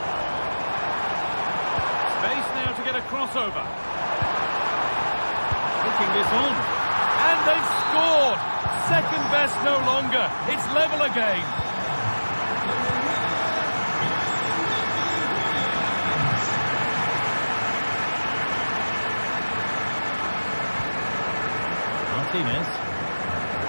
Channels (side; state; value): both; inverted; correlation -1.00